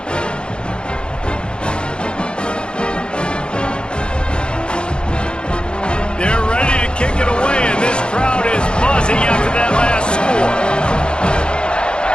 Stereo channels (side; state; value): right; late; 0.052 ms